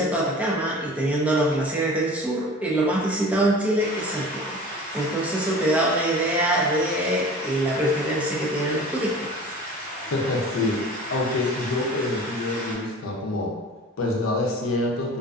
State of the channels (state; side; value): normal; both; correlation 0.40